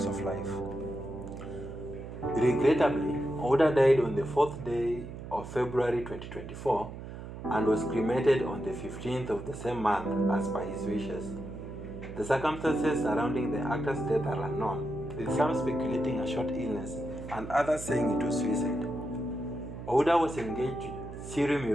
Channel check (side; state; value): right; noise; hum, 11 dB below the sound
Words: of life. Regrettably, Ouda died on the 4th day of February 2024 and was cremated on the 15th of the same month as per his wishes. The circumstances surrounding the actor's death are unknown, with some speculating a short illness and others saying it was suicide. Ouda was engaged to Siri